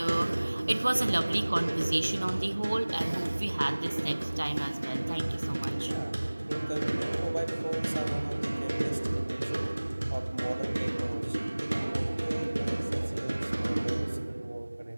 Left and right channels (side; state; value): both; inverted; correlation -1.00